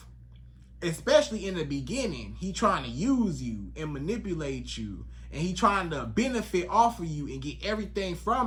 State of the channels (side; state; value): both; identical; correlation 1.00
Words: especially in the beginning, he trying to use you and manipulate you. And he trying to benefit off of you and get everything